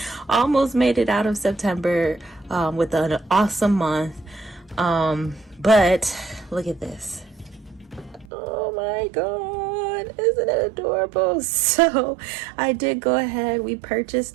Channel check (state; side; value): drops out; left; at 8.2 s